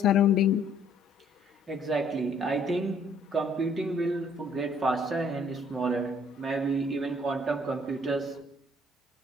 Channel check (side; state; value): both; normal; correlation 0.62